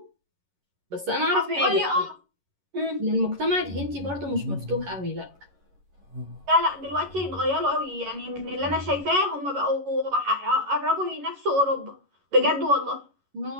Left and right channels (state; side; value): late; left; 11 ms